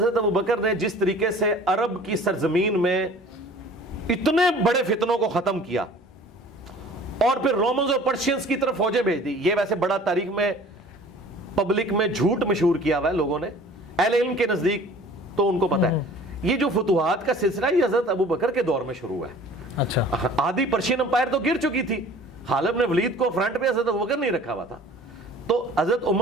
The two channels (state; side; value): normal; both; correlation 0.47